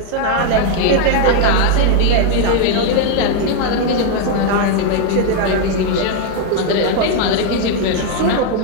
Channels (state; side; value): different; both; correlation 0.00